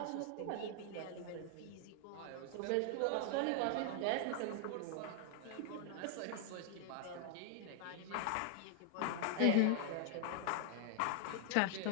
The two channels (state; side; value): different; both; correlation 0.00